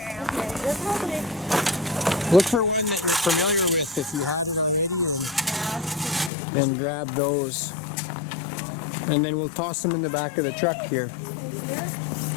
Look for one that you're familiar with if you had it already, and then grab those. And then we'll toss them in the back of the truck here.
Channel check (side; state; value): right; drops out; at 6.3 s